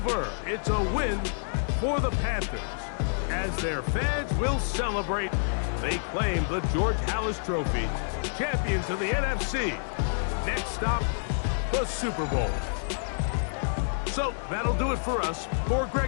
It's a win for the Panthers. As their fans will celebrate, they claim the George Halas Trophy, champions of the NFC. Next stop, the Super Bowl. So that'll do it for us. For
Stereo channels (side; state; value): right; silent; digital silence